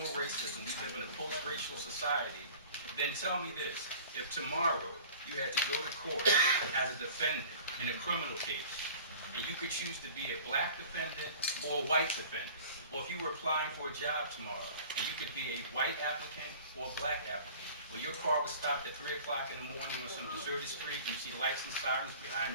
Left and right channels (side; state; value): both; inverted; correlation -0.44